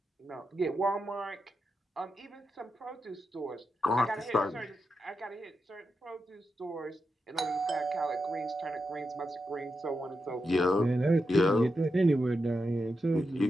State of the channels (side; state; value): both; normal; correlation 0.87